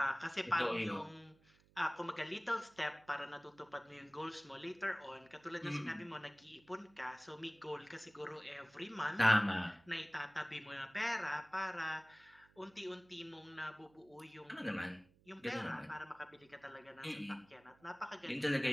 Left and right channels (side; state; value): right; noise; hum, 29 dB below the sound